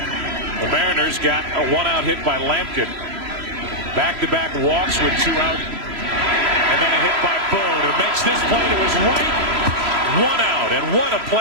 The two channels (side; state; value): left; late; 3.0 ms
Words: Mariners got a 1-out hit by Lampkin. Back-to-back walks with 2 out. And then a hit by Boone, who makes this play to his right. 1 out. And what a